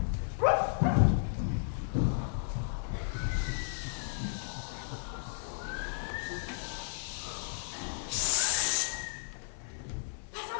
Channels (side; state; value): right; silent; digital silence